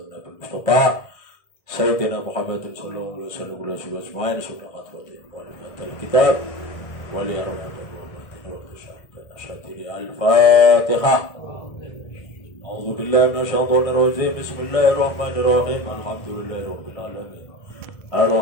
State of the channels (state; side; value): late; right; 1.6 ms